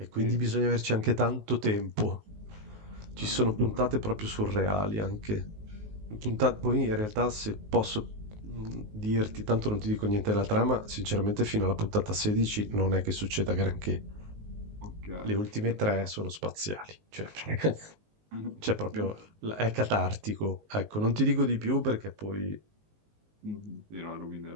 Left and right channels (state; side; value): late; left; 19 ms